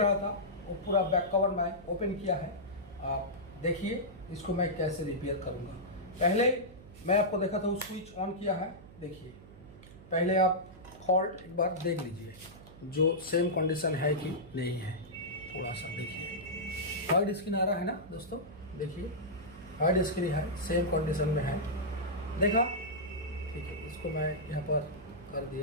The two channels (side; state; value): right; noise; hum, 19 dB below the sound